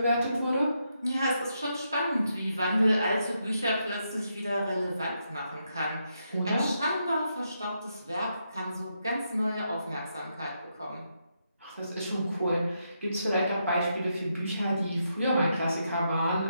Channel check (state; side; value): inverted; both; correlation -0.81